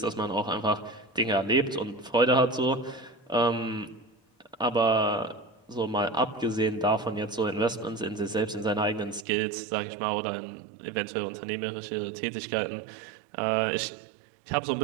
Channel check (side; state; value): left; drops out; at 9.2 s